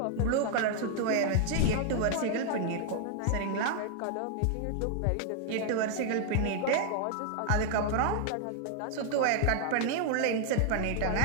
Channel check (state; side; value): different; both; correlation 0.00